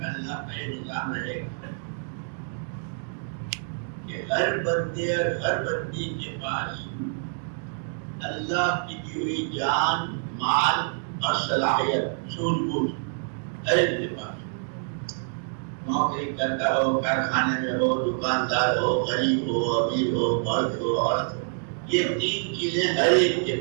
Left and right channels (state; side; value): silent; left; 60 dB below the other